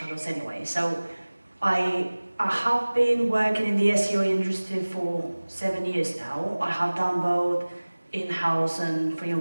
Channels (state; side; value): inverted; both; correlation -1.00